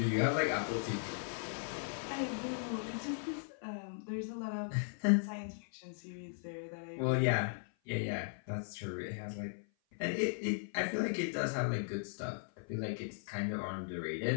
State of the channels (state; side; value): silent; right; 53 dB below the other